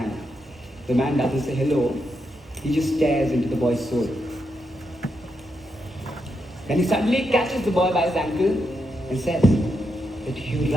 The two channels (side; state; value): both; normal; correlation 0.83